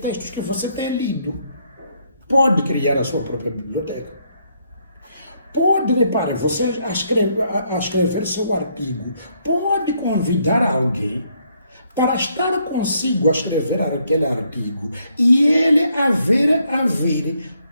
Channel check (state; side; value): inverted; both; correlation -0.72